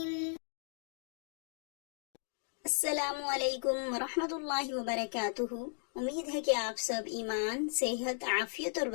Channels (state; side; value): silent; right; 54 dB below the other